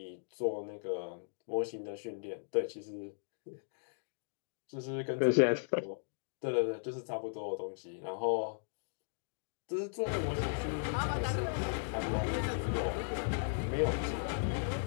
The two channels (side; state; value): right; silent; digital silence